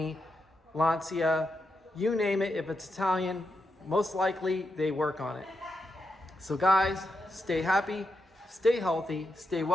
Lancia, you name it. If it's Italian, most likely they work on it. So guys, stay happy, stay healthy, stay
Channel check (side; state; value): both; normal; correlation 0.85